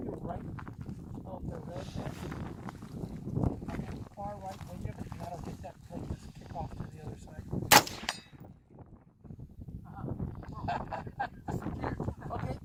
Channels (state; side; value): identical; both; correlation 1.00